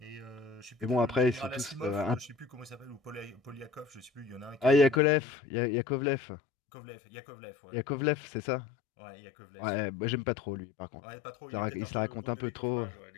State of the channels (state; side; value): drops out; right; at 5.0 s